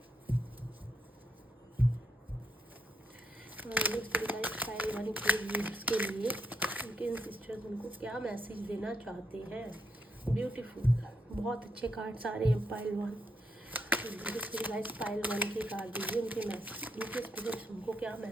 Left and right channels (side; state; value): both; normal; correlation 0.79